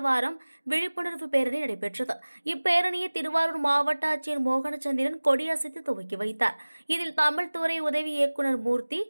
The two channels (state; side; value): inverted; both; correlation -1.00